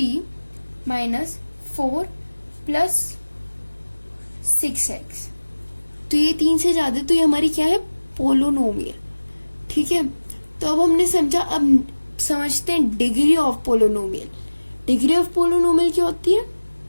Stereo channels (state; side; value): inverted; both; correlation -1.00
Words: माइनस 4 प्लस 6x, तो ये 3 से ज्यादा, तो ये हमारी क्या है? पोलिनोमियल। ठीक है, तो अब हमने समझा। अब समझते हैं degree of polynomial. Degree of polynomial क्या होती है?